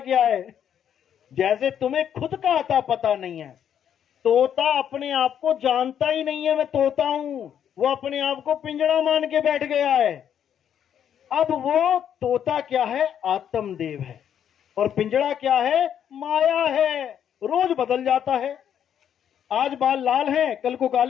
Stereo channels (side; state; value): right; quieter; 9.2 dB